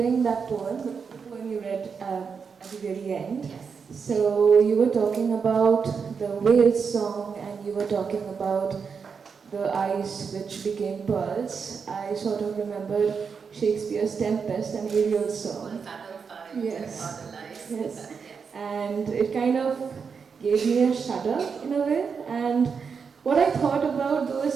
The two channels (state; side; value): quieter; left; 5.9 dB